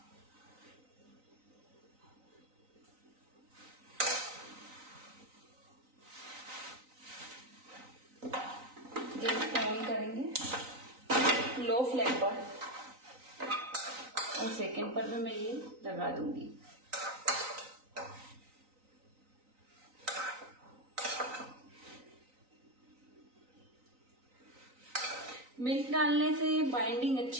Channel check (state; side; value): late; left; 3.9 ms